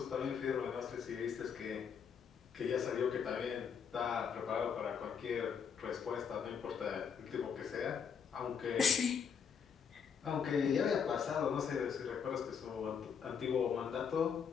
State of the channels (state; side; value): quieter; right; 6.8 dB